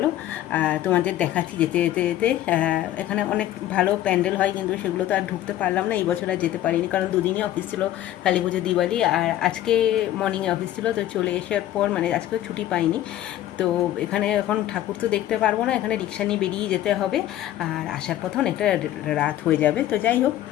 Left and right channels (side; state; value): right; quieter; 13.1 dB